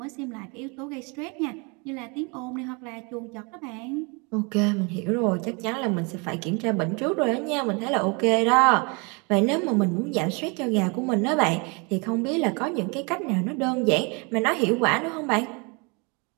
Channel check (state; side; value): quieter; left; 31.1 dB